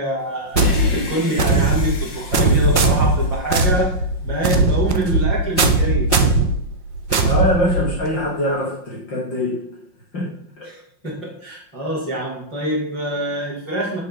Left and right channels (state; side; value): late; right; 5.6 ms